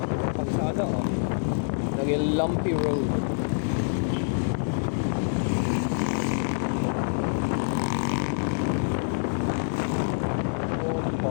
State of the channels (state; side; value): silent; right; digital silence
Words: Kalsada oh. Naging lumpy road.